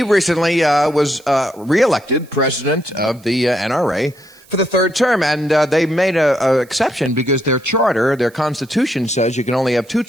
recently was re-elected president of the NRA for the third term, and they made an exception because their charter, their constitution says you can only have 2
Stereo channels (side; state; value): right; noise; hiss, 28 dB below the sound